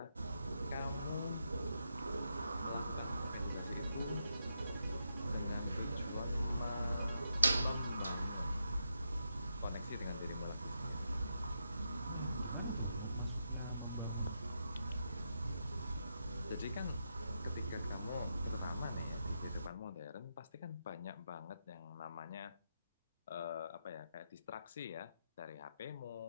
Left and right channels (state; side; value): inverted; both; correlation -0.83